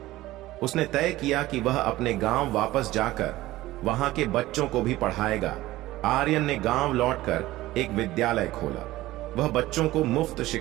उसने तय किया कि वह अपने गांव वापस जाकर वहां के बच्चों को भी पढ़ाएगा। आर्यन ने गांव लौटकर एक विद्यालय खोला। वह बच्चों को मुफ्त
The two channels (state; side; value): quieter; left; 16.9 dB